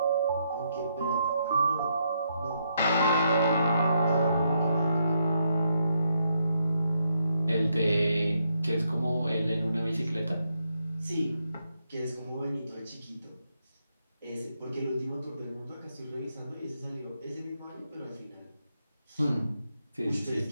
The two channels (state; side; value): inverted; both; correlation -0.78